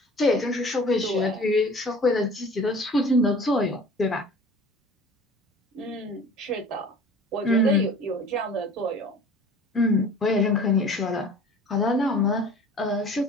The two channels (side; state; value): both; normal; correlation 0.45